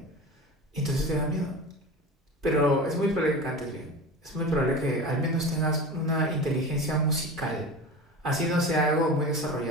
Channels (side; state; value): both; normal; correlation 0.31